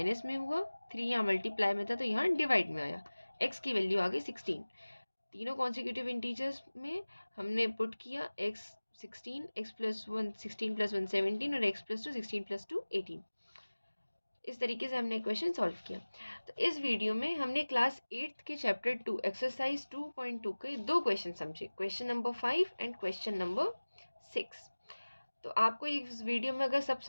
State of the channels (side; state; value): both; inverted; correlation -1.00